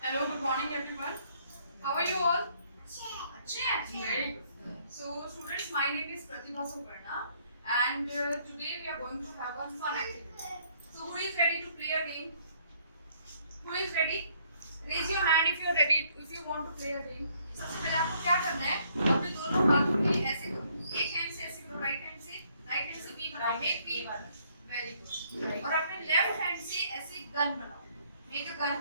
good morning everyone. How are you all? Very good. So students, my name is Pratibha Suparna and today we are going to have one fun activity. So who is ready to play a game? Who is ready? Raise your hand if you are ready, if you want to play a game. सबसे पहले आपको क्या करना है, अपने दोनों हाथों को ऐसे करो, एक हैंड से ऐसे करो, राइट हैंड से वी बनाओ, make V one, very good. और अपने लेफ्ट हैंड से ऐसे गन बनाओ, मेक अ गन,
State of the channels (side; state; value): both; inverted; correlation -0.66